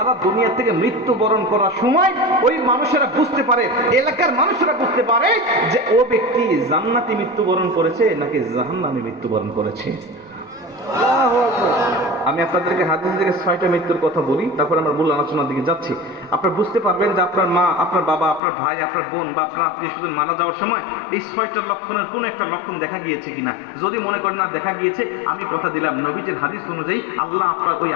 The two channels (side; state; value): right; drops out; at 18.4 s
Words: দুনিয়া থেকে মৃত্যুবরণ করার সময় ওই মানুষেরা বুঝতে পারে, এলাকার মানুষেরা বুঝতে পারে যে ও ব্যক্তি জান্নাতি মৃত্যুবরণ করেছে নাকি জাহান্নামে মৃত্যুবরণ করেছে। আমি আপনাদেরকে হাদিস থেকে 6টা মৃত্যুর কথা বলি, তারপর আমরা মূল আলোচনার দিকে যাচ্ছি। আপনারা বুঝতে পারবেন যে আপনার মা, আপনার বাবা, আপনার ভাই, আপনার বোন বা আপনার আত্মীয় স্বজন মারা যাওয়ার সময় এই 6টা লক্ষণের কোনো একটা লক্ষণ দেখা গিয়েছে কিনা। যদি মনে করেন না দেখা গিয়েছে, আমি কথা দিলাম নবীজির হাদিস অনুযায়ী আল্লাহ আপনার ওই